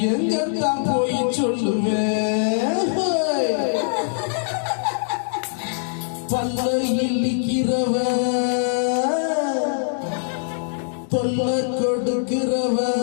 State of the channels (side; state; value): right; silent; digital silence